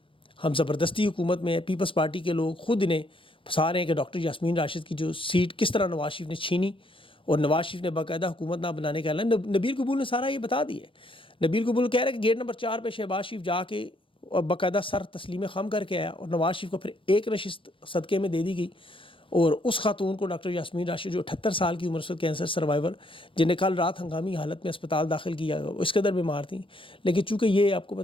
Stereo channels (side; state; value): right; late; 0.25 ms